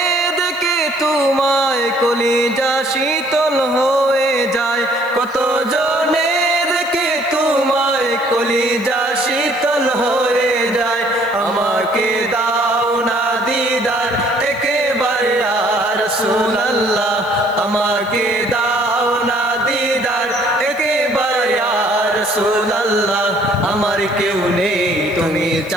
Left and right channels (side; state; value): left; noise; hiss, 24 dB below the sound